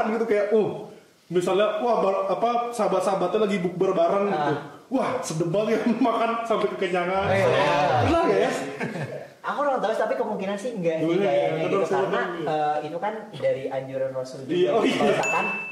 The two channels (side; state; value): both; identical; correlation 1.00